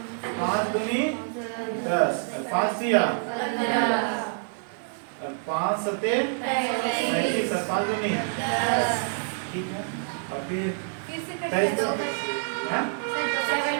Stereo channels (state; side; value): silent; left; digital silence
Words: 5 दूनी 10, 5 दिया 5 सते 35, 5 दूनी, ठीक है। और फिर 22 हाँ?